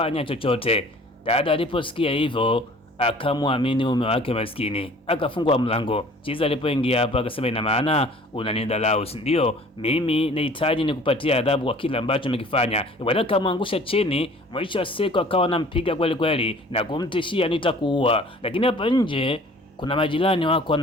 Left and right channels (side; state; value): both; normal; correlation 0.50